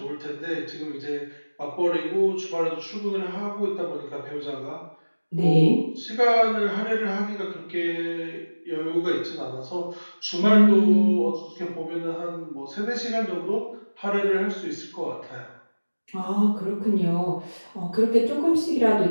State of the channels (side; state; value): both; inverted; correlation -1.00